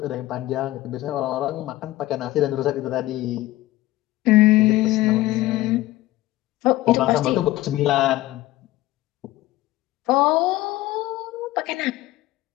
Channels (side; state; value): right; quieter; 17.0 dB